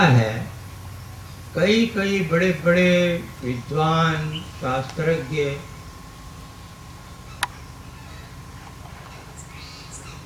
कई कई बड़े बड़े विद्वान शास्त्रज्ञ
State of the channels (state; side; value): identical; both; correlation 1.00